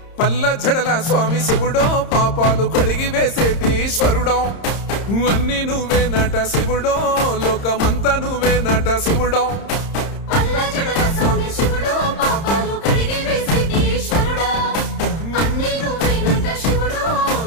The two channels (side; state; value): right; late; 30 ms